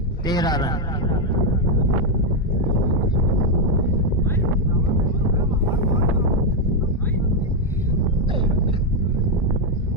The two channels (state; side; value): normal; both; correlation 0.03